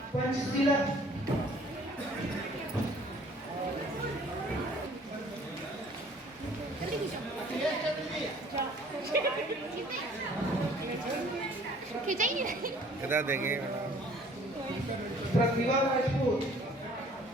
पंचशीला, इधर देखिए प्रतिभा राजपूत,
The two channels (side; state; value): both; normal; correlation 0.55